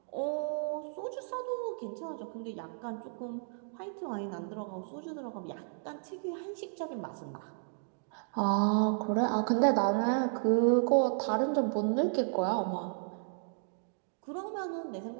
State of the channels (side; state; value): left; silent; digital silence